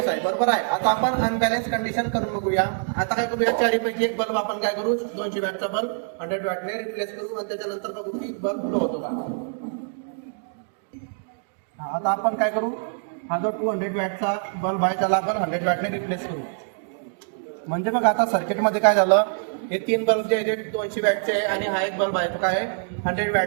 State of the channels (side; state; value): left; silent; digital silence